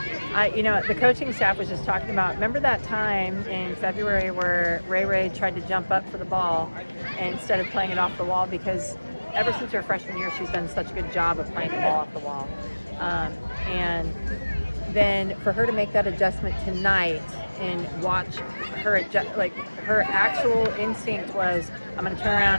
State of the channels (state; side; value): inverted; both; correlation -1.00